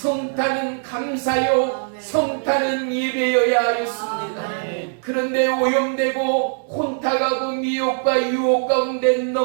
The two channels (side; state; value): left; silent; digital silence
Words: 감사요, 성탄은 예배여야 하였습니다. 그런데 오염되고 혼탁하고 미혹과 유혹 가운데